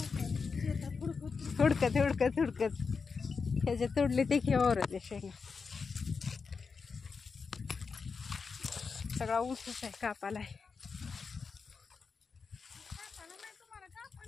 हुडकत हुडकत हुडकत ह्याच्या तोडले ते खेळवर होते शेंगा. सगळा ऊसच आहे कापाला आहे.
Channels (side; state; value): right; quieter; 5.1 dB